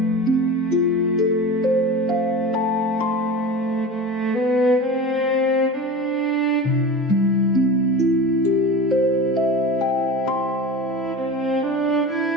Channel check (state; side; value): normal; both; correlation 0.31